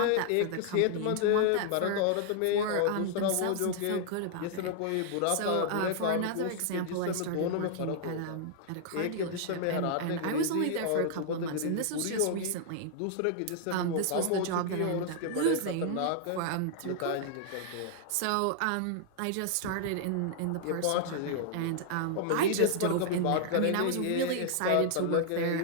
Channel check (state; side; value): different; both; correlation -0.01